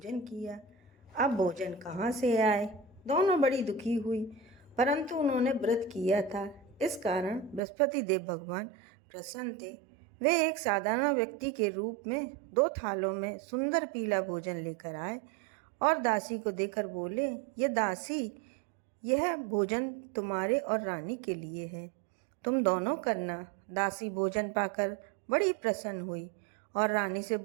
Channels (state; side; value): drops out; left; at 7.6 s